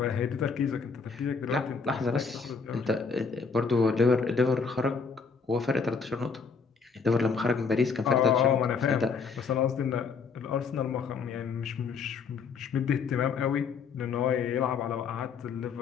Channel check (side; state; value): right; quieter; 5.3 dB